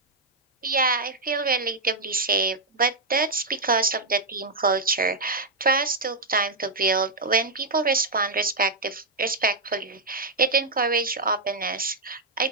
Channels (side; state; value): left; quieter; 3.4 dB